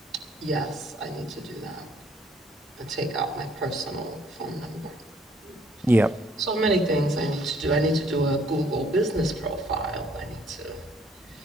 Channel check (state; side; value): normal; both; correlation 0.63